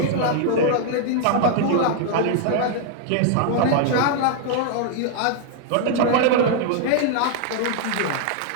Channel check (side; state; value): both; different; correlation 0.00